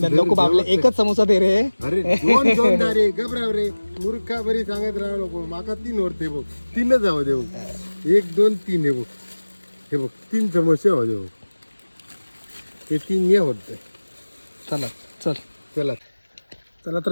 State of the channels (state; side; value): inverted; both; correlation -1.00